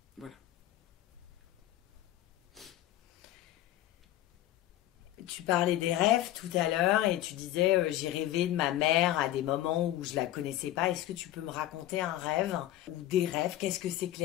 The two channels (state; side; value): quieter; right; 14.0 dB